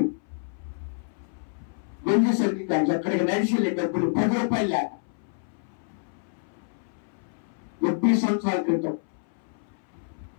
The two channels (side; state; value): right; silent; 60 dB below the other